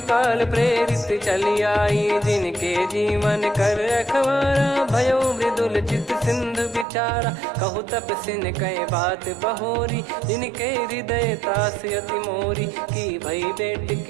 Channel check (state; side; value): drops out; left; at 6.9 s